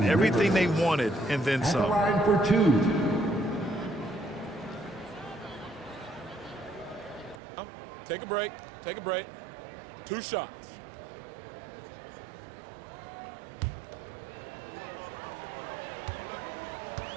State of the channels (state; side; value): drops out; left; at 7.4 s